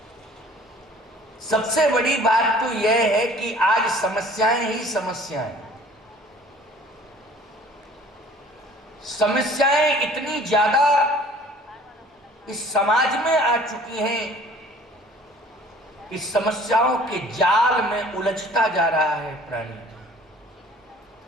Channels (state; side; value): normal; both; correlation 0.51